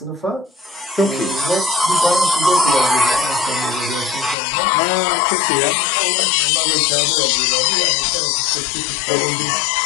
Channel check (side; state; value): right; drops out; at 4.4 s